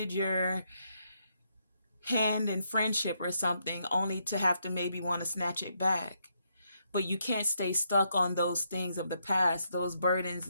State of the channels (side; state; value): both; inverted; correlation -0.77